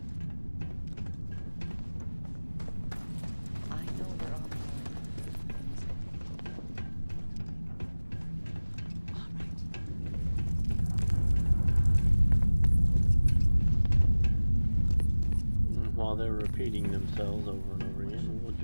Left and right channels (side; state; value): both; inverted; correlation -1.00